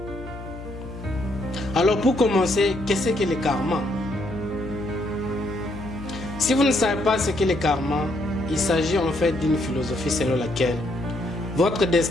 Alors pour commencer, qu'est-ce que le karma? Si vous ne savez pas ce qu'est le karma, il s'agit en fait d'une philosophie selon laquelle votre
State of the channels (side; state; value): left; noise; hum, 12 dB below the sound